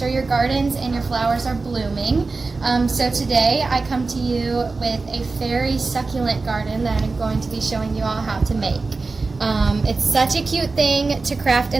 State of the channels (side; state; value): left; quieter; 3.9 dB